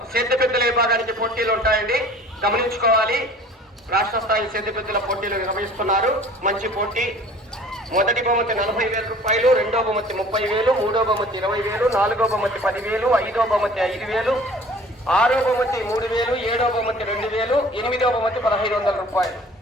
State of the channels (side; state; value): both; normal; correlation 0.48